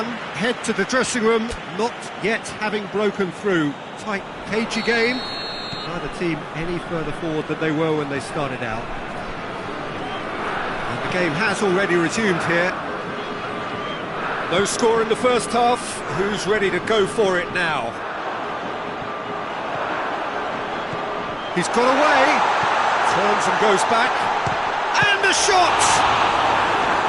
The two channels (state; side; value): identical; both; correlation 1.00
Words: head to the dressing room, not yet having broken through. Tight, cagey game. Neither team any further forward than they were when they started out. And the game has already resumed here. No score in the first half. Who's ready to go for it now? He's got away. Turns and goes back. And the shot!